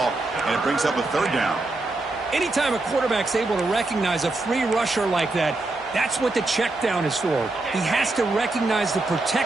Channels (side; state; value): left; quieter; 3.0 dB